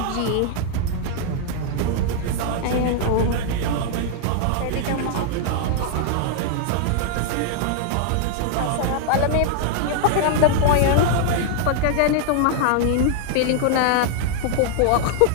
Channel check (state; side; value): different; both; correlation 0.00